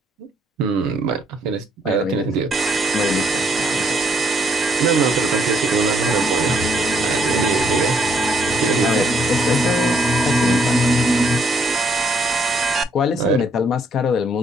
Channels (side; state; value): both; normal; correlation 0.70